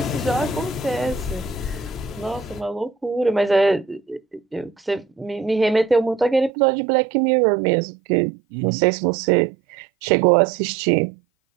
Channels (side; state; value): left; drops out; at 6.5 s